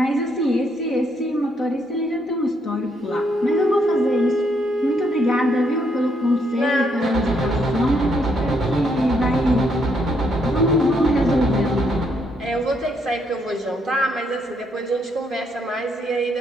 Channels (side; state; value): both; normal; correlation 0.74